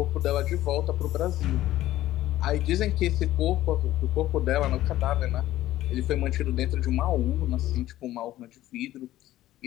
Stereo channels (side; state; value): right; quieter; 14.6 dB